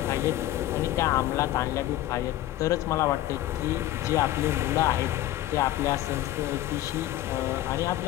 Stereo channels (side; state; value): right; quieter; 14.3 dB